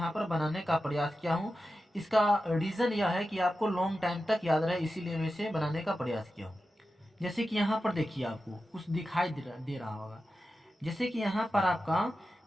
पर बनाने का प्रयास किया हूँ। इसका रीज़न यह है कि आपको लॉन्ग टाइम तक याद रहे, इसीलिए मैं इसे बनाने का प्रयास किया हूँ। जैसे कि यहाँ पर देखिए आपको कुछ दिखाई दे रहा होगा। जैसे कि यहाँ पर आपका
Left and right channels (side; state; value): both; normal; correlation 0.92